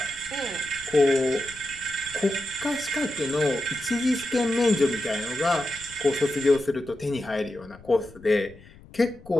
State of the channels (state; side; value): noise; left; rumble, 21 dB below the sound